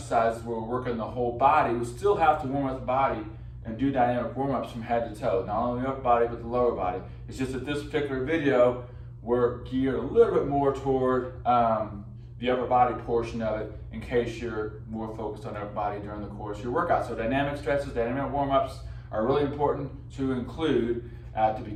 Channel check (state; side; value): identical; both; correlation 1.00